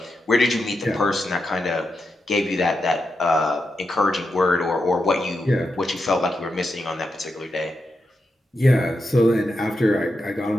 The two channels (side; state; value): both; normal; correlation 0.87